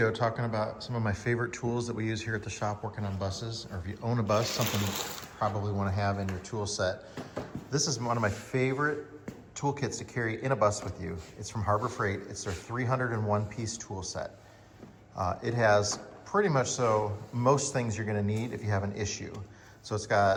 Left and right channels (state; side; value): identical; both; correlation 1.00